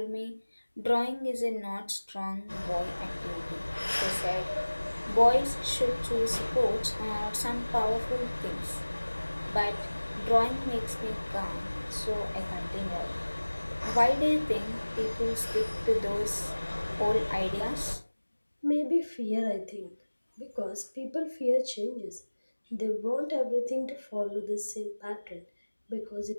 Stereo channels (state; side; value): inverted; both; correlation -1.00